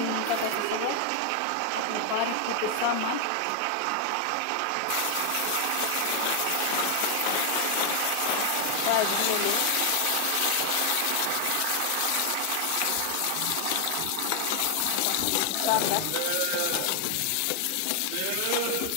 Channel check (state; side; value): different; both; correlation 0.00